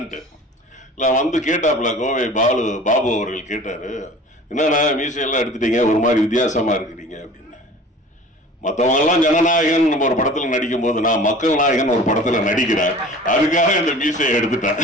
இல்ல வந்து கேட்டாப்ல கோவை பாபு அவர்கள் கேட்டாரு, என்னன்னா மீசையெல்லாம் எடுத்துட்டீங்க, ஒரு மாதிரி வித்தியாசமா இருக்கிறீங்க அப்படின்னு. மற்றவங்க எல்லாம் ஜனநாயகன் நம்ம ஒரு படத்துல நடிக்கும் போது நான் மக்கள் நாயகன் ஒரு படத்துல நடிக்கிறேன், அதுக்காக இந்த மீசையை எடுத்துட்டேன்.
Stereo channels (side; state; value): both; normal; correlation 0.43